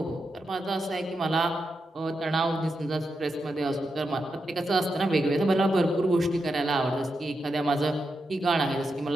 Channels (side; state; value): both; normal; correlation 0.86